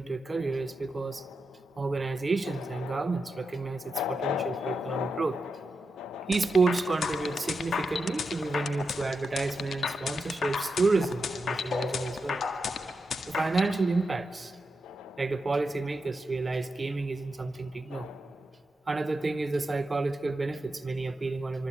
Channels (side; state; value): both; normal; correlation 0.88